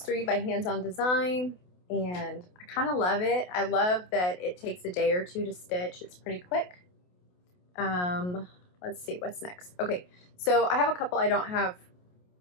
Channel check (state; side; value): late; right; 28 ms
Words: 3 by Hands On Design, and I kind of love it. I love that it takes a day or two to stitch. It's pretty quick. Let's see what's next. Okay, so I have a couple I don't have